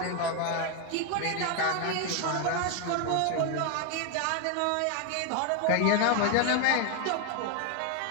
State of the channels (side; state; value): both; different; correlation 0.01